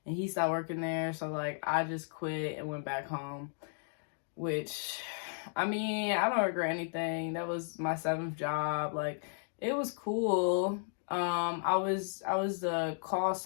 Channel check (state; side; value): silent; right; digital silence